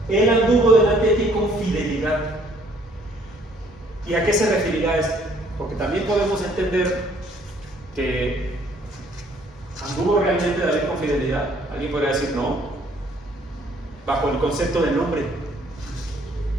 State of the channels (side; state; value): both; normal; correlation 0.62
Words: él anduvo delante de ti con fidelidad. ¿Y a qué se referirá esto? Porque también podemos entender que anduvo realmente David con fidelidad. Alguien podría decir no, bajo el concepto del nombre.